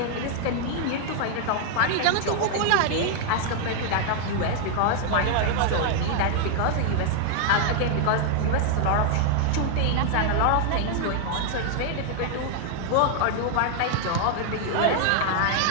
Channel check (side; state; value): both; different; correlation 0.00